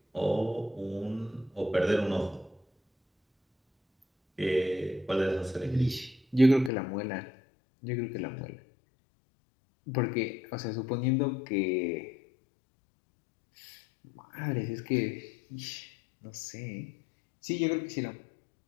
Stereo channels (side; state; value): right; drops out; at 6.7 s